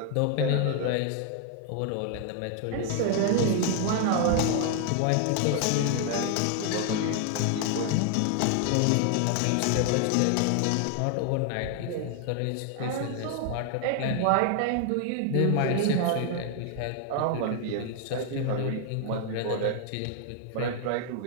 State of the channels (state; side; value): different; both; correlation 0.00